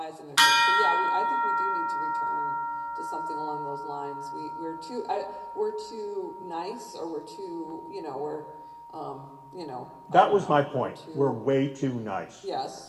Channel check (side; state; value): both; identical; correlation 1.00